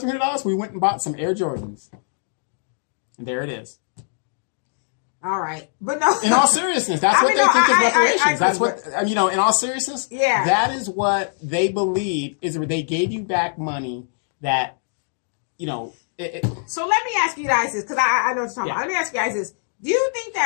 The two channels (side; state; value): right; silent; digital silence